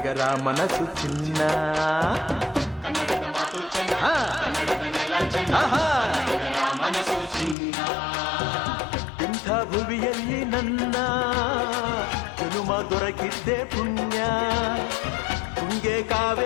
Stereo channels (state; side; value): drops out; right; at 7.6 s